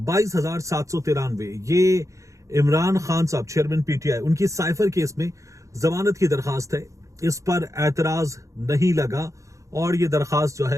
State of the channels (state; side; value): late; left; 0.15 ms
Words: ये इमरान खान साहब चेयरमैन PTI, उनकी साइफर केस में जमानत की दरखास्त है। इस पर एतराज नहीं लगा और ये दरखास्त जो